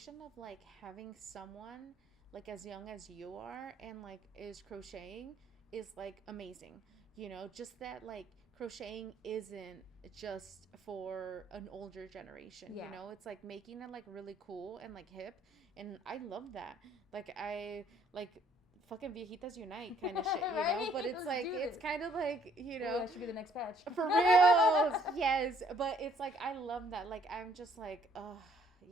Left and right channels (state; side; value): normal; both; correlation 0.63